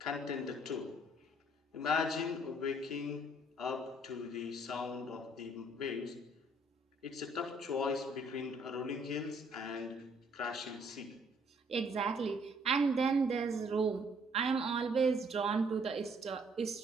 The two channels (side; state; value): both; normal; correlation 0.64